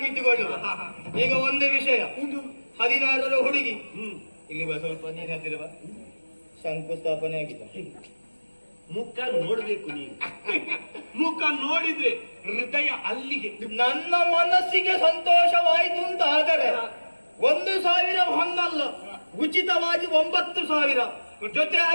ಇಟ್ಟುಕೊಳ್ಳುವ. ಈಗ ಒಂದೇ ವಿಷಯ, 16ರ ಹುಡುಗಿ ಇಲ್ಲಿ ಸ್ವಲ್ಪ ನೀನು ಹತ್ತಿರವ ಶಂಕುಸ್ಥಾಪನೆ ಆಗಿದೆ. ಮುಖ ನೋಡ್ಬೇಕು ನೀವು. ಮುಖ ನೋಡಿದ್ರೆ ಹೃದಯ ಅಲ್ಲಿಗೆ. ನನ್ನ ಮನಸ್ಸಿಗೆ ಸಂತೋಷವಾಯಿತು ಅಂತ ಆದರೆ 1,000 ಹೊನ್ನಲ್ಲ, ಉಚಿತವಾಗಿ 9,000 ಜೊತೆ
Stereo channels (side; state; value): both; inverted; correlation -1.00